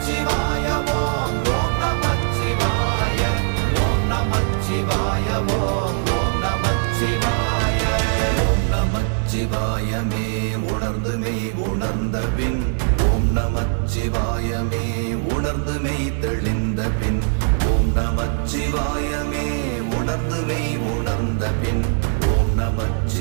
ஓம் ஓம் நமச்சிவாய ஓம் நமச்சிவாய ஓம் ஓம் நமச்சிவாய. ஓம் நமச்சிவாயமே உணர்ந்துமே உணர்ந்த பின் ஓம் நமச்சிவாயமே உணர்ந்துமே தெளிந்த பின் ஓம் நமச்சிவாயமே உணர்ந்துமே உணர்ந்த பின் ஓம்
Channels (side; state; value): left; silent; digital silence